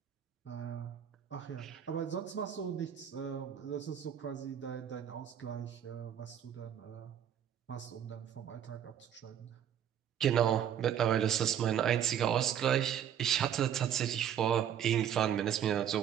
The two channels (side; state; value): left; quieter; 9.4 dB